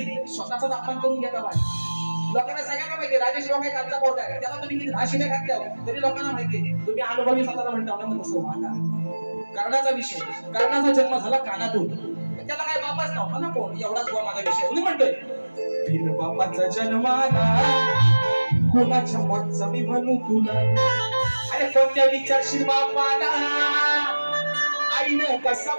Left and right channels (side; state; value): both; inverted; correlation -1.00